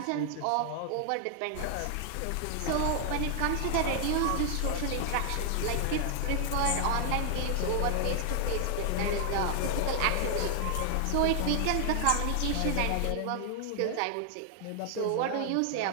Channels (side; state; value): both; different; correlation 0.00